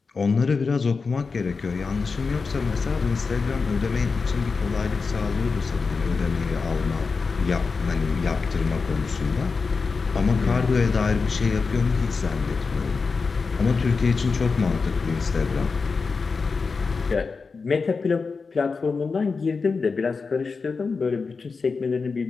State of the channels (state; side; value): quieter; right; 4.7 dB